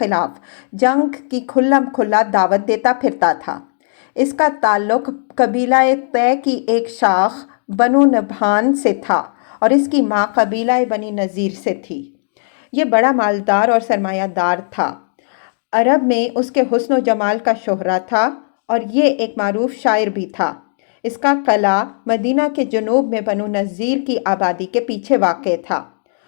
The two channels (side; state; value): right; silent; digital silence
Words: جنگ کی کھلم کھلا دعوت دیتا پھرتا تھا۔ اس کا تعلق قبیلہ طے کی ایک شاخ بنو نبھان سے تھا اور اس کی ماں قبیلہ بنی نذیر سے تھی۔ یہ بڑا مالدار اور سرمایہ دار تھا۔ عرب میں اس کے حسن و جمال کا شہرہ تھا اور یہ ایک معروف شاعر بھی تھا۔ اس کا قلعہ مدینہ کے جنوب میں بنو نذیر کی آبادی کے پیچھے واقع تھا۔